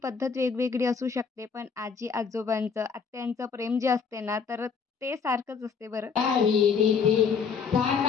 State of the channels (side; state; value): right; quieter; 5.9 dB